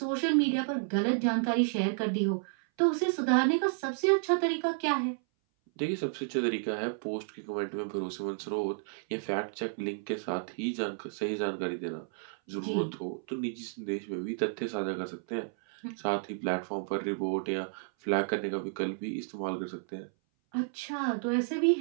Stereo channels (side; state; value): left; silent; 57 dB below the other